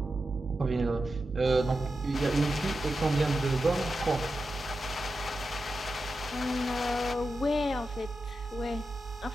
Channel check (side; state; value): both; normal; correlation 0.90